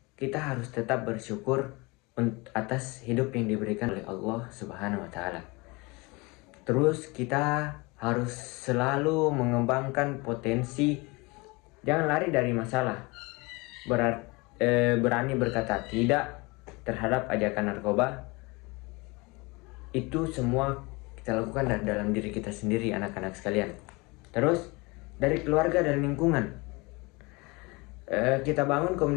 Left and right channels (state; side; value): quieter; right; 25.8 dB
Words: kita harus tetap bersyukur atas hidup yang diberikan oleh Allah Subhanahu wa Ta'ala. Terus kita harus selalu mengembangkan potensi, jangan lari dari masalah. Berani berkata tidak terhadap ajakan narkoba. Itu semua kita lakukan dari dalam diri kita sendiri, anak-anak sekalian. Terus dari keluarga dan lingkungan, kita bangun